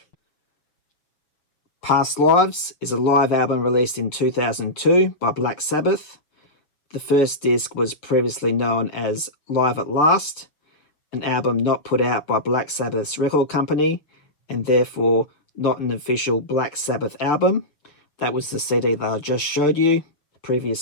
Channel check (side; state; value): right; late; 6.8 ms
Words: Past Lives is a live album released in 2002 by Black Sabbath. The first disc was previously known as Live at Last, an album not put out by Black Sabbath's record company, and therefore not an official Black Sabbath album. That was the CD that I just showed you